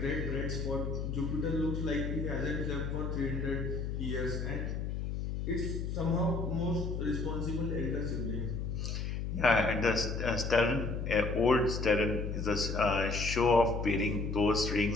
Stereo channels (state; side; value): noise; left; hum, 3 dB below the sound